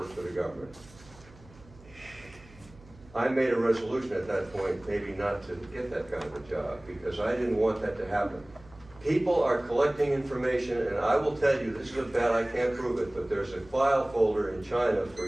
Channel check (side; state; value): right; noise; hum, 23 dB below the sound